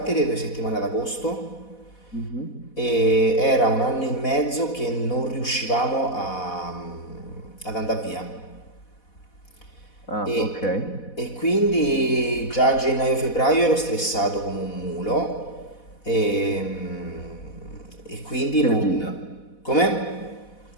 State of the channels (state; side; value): late; right; 4.1 ms